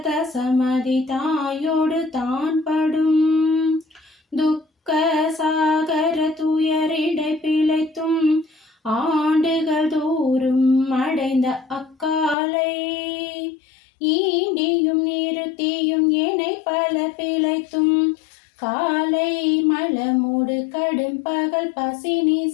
தசமதி தாயோடு தான் படும் துக்க சாகர துயரிடை பிழைத்தும் ஆண்டுகள் தோறும் அடைந்த அக்காலை ஈண்டியும் நிறுத்தியும் எனை பல பிழைத்தும் காலை மலமோடு கடும் பகல்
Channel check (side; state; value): right; drops out; at 12.4 s